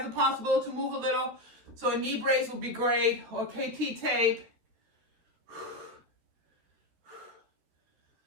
a possibility to move a little. So a knee brace would be great, or KT tape.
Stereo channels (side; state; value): left; late; 13 ms